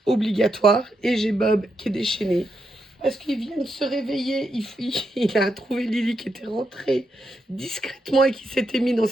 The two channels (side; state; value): both; normal; correlation 0.82